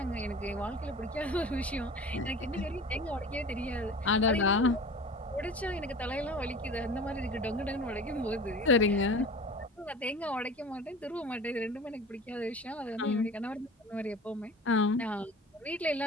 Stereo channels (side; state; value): both; normal; correlation 0.38